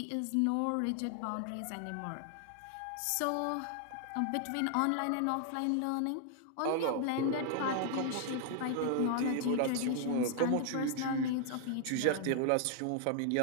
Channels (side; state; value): both; different; correlation 0.00